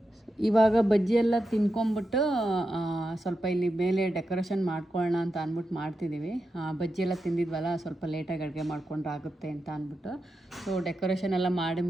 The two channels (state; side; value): normal; both; correlation 0.88